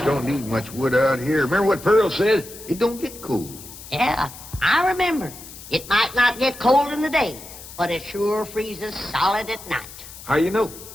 don't need much wood out here. Remember what Pearl said? It don't get cold. Yeah, I remember. It might not get cold in the day, but it sure freezes solid at night. How you know?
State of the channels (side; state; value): left; noise; hiss, 15 dB below the sound